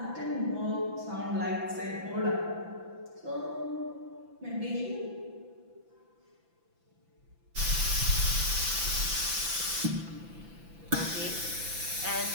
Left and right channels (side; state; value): left; late; 5.9 ms